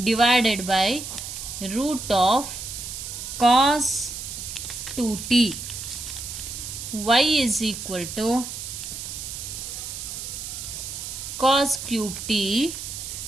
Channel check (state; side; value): noise; right; hiss, 8 dB below the sound